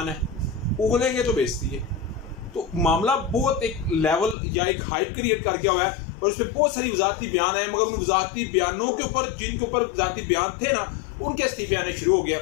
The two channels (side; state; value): right; drops out; at 4.4 s